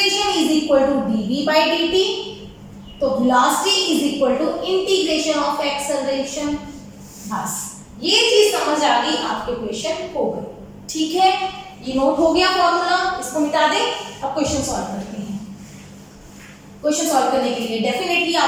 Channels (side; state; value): both; identical; correlation 1.00